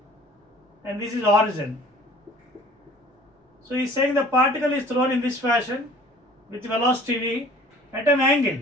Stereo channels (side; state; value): both; normal; correlation 0.50